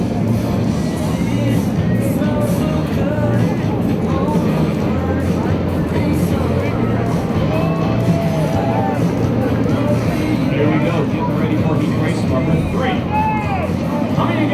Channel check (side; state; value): both; identical; correlation 1.00